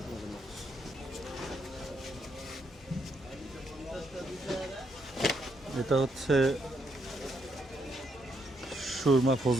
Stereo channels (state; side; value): normal; both; correlation 0.76